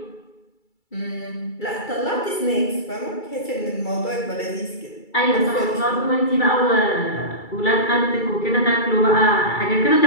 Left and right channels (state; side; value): late; right; 2.3 ms